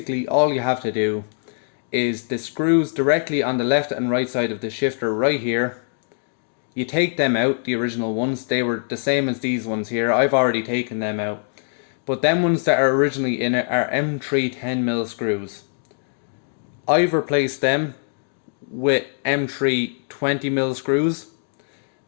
all you have to do is the screws directly on the left and right side of the shifter right here. You take them out, the original ones, they were the same as these ones here. I've already taken them out. But them ones that are originally in it are M3 10mm screws. I've replaced them with M3 20mm screws.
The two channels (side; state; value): right; silent; digital silence